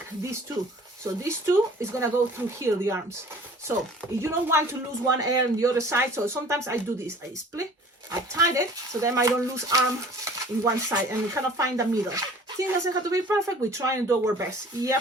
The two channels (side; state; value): both; normal; correlation 0.48